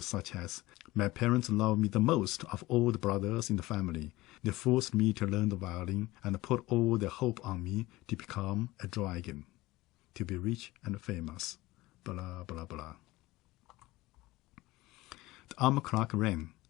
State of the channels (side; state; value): right; quieter; 19.1 dB